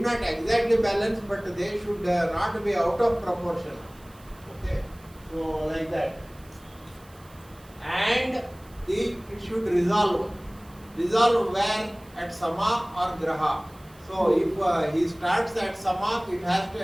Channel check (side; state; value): right; noise; hiss, 26 dB below the sound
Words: exactly balance, but they should not be out of proportion. Okay, so like that. And it should resolve. Resolve where? At Sama or Graha. So if he starts at Sama, it has to